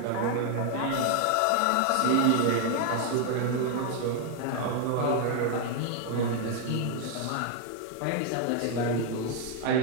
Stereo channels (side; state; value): both; different; correlation 0.00